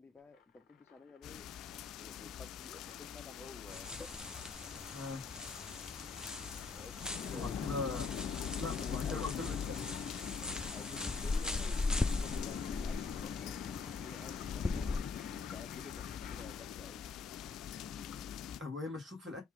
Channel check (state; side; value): quieter; right; 4.5 dB